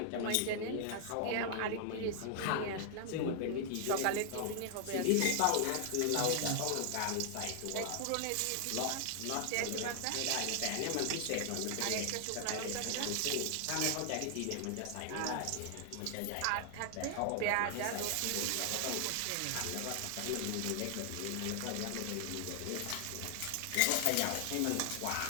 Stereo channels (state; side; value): different; both; correlation 0.00